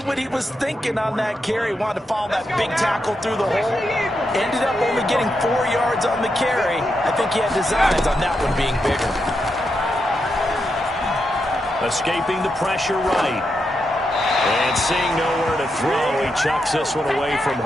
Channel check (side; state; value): both; normal; correlation 0.84